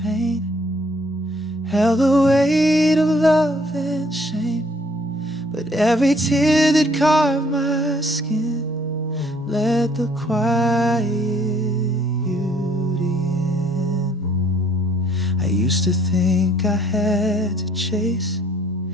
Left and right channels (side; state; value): both; normal; correlation 0.62